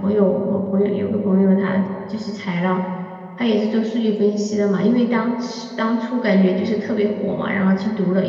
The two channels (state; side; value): identical; both; correlation 1.00